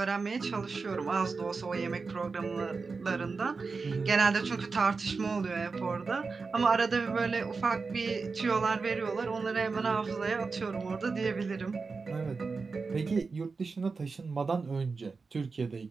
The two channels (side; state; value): left; quieter; 4.5 dB